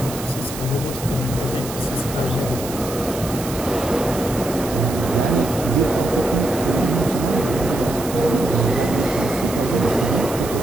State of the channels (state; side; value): noise; right; hiss, 11 dB below the sound